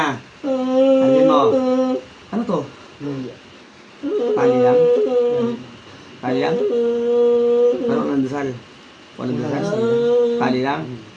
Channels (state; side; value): identical; both; correlation 1.00